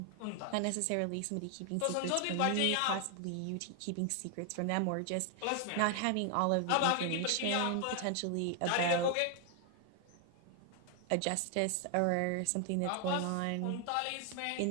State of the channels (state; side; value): different; both; correlation 0.00